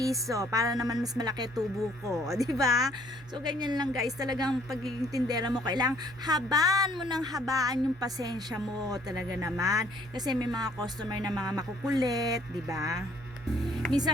para naman mas malaki tubo ko. Di ba? So, ganyan lang guys. Talagang pagiging tindera mo, kailangang habaan mo ng habaan yung pasensya mo. Talaga naman. Kasi may mga customer na mga makukulit. Di ba?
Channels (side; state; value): both; normal; correlation 0.62